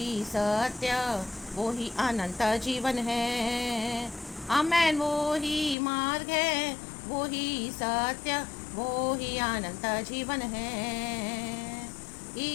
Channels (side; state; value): right; drops out; at 5.8 s